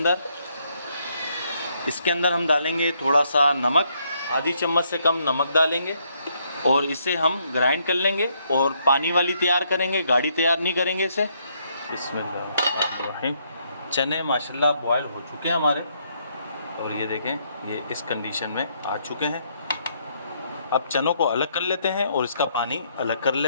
इसके अंदर हम डालेंगे थोड़ा सा नमक, आधी चम्मच से कम नमक डालेंगे, और इसे हम ग्राइंड कर लेंगे। और पानी वाली तैयार करेंगे, गाढ़ी तैयार नहीं करेंगे इसे। बिस्मिल्लाह। चने माशाल्लाह बॉयल हो चुके हैं हमारे, और ये देखें ये इस कंडीशन में आ चुके हैं। अब चनों को अलग कर लेते हैं और इसका पानी अलग कर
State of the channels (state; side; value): inverted; both; correlation -0.73